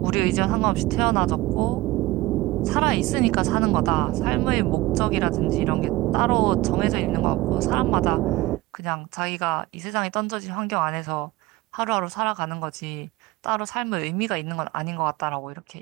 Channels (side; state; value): left; quieter; 19.3 dB